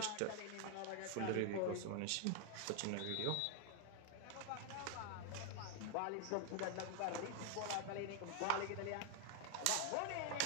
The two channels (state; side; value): different; both; correlation 0.00